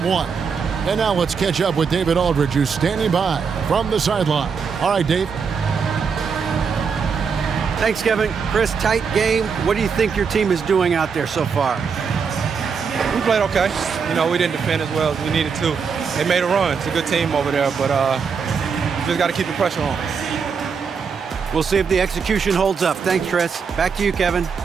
And now let's catch up with David Aldridge, who's standing by from the sideline. All right, Dave. Thanks, Kevin. Chris, tight game. What do you think your team is doing out there so far? We played okay. You know, we didn't defend as well as we needed to. They made a run. It's a good team over there, but we just got to keep the pressure on. We'll see if the execution holds up. Thanks, Chris. Back to you, Kevin.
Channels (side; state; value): left; quieter; 5.9 dB